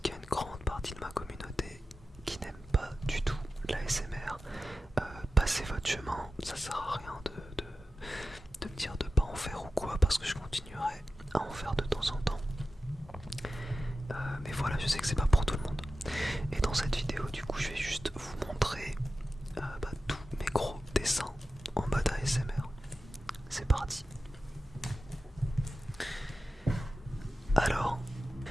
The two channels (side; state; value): both; normal; correlation 0.93